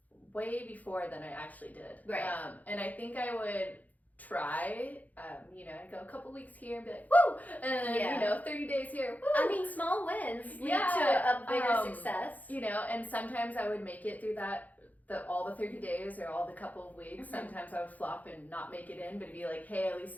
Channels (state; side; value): late; right; 0.079 ms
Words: way before than I actually did. Right. And I think I would try, I'd go a couple weeks here and be like, woo! And then, 30 days here, woo! I mean, small wins lead to a bigger success. And sometimes I would make it through all the 30 days or all the couple of weeks. Sometimes I would flop and not make it in, but it'd be like, hey, at least